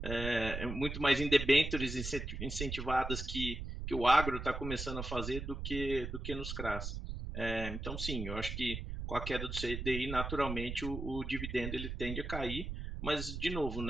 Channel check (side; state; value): right; noise; rumble, 5 dB below the sound